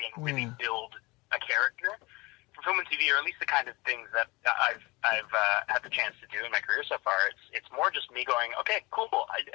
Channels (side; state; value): right; quieter; 23.8 dB